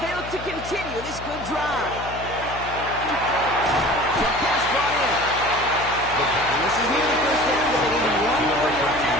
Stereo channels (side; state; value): left; noise; hum, 13 dB below the sound